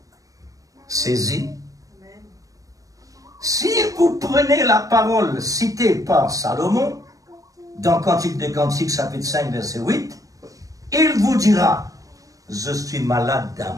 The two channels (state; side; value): late; left; 0.16 ms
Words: saisir. Si vous prenez la parole citée par Salomon, dans Cantique des Cantiques, chapitre 5, verset 8, il vous dira, je suis malade